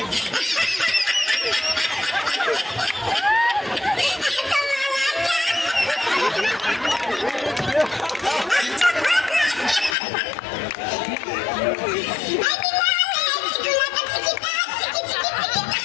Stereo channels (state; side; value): drops out; right; at 10.0 s